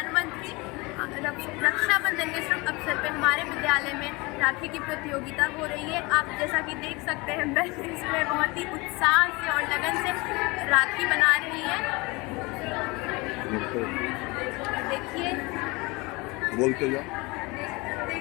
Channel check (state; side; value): quieter; right; 25.0 dB